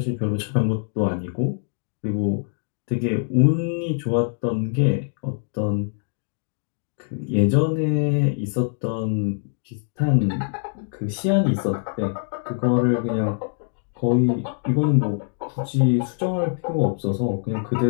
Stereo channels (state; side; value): silent; right; digital silence